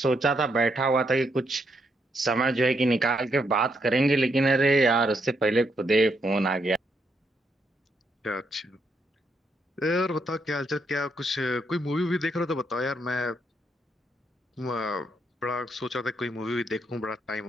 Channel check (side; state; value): both; normal; correlation 0.77